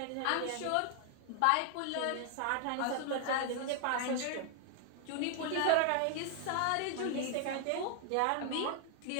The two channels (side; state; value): both; different; correlation 0.00